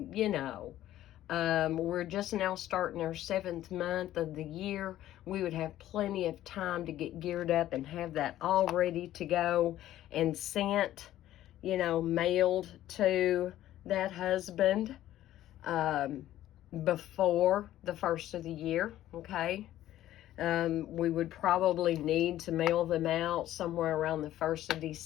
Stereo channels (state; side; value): quieter; right; 13.4 dB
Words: we're just now starting our 7th month of the year. We would have plenty of time to get geared up and have that all ready to go and sent, mailed to that husband before the first of the year, okay? We would probably need to mail them out somewhere around the 1st of